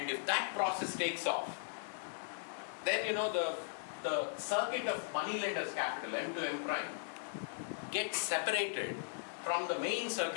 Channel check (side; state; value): right; silent; 52 dB below the other